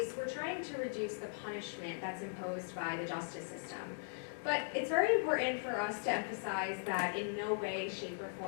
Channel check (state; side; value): silent; right; digital silence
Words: we're trying to reduce the punishment that's imposed by the justice system. But it's very important for us to emphasize that in no way, shape, or